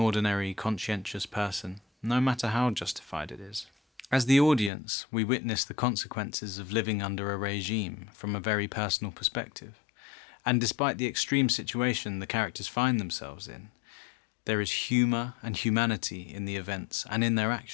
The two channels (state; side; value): drops out; right; at 4.7 s